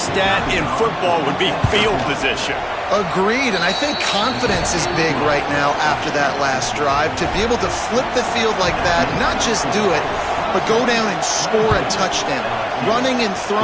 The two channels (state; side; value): identical; both; correlation 1.00